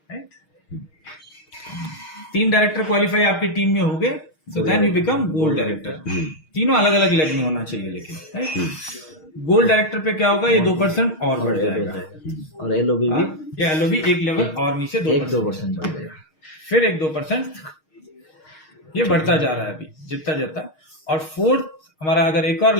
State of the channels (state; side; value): late; right; 6.4 ms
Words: right? 3 director qualify आपकी टीम में हो गए, so then you become gold director. तीनों अलग अलग लेवल में होना चाहिए लेकिन, राइट? गोल्ड डायरेक्टर पे क्या होगा, ये 2% और बढ़ जाएगा, और एलओबी भी ये एलओबी एक लेवल और नीचे 2% बढ़ जाएगा, फिर एक 2%, ये बढ़ता जा रहा है अभी जितना जाता। और फोर्थ हमारा अगर एक और